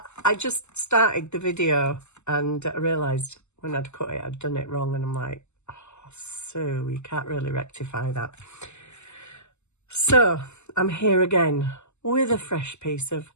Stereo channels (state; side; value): late; right; 0.83 ms